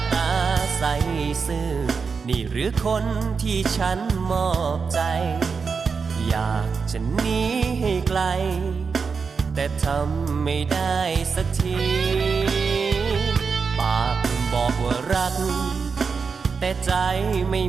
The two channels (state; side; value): quieter; left; 5.3 dB